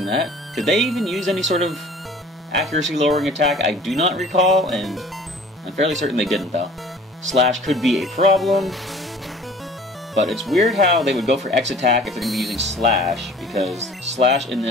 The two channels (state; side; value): normal; both; correlation 0.48